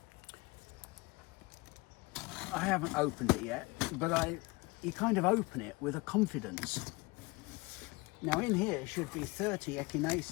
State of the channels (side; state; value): right; quieter; 24.6 dB